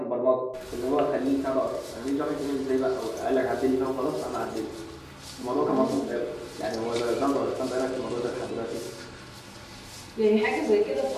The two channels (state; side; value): identical; both; correlation 1.00